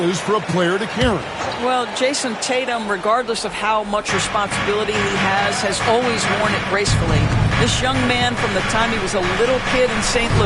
for a player to carry? Well, Jason Tatum, regardless of how much responsibility he has always worn it gracefully. This young man, from the time he was a little kid in St.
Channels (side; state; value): both; identical; correlation 1.00